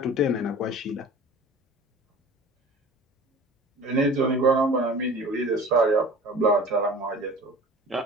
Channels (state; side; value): normal; both; correlation 0.41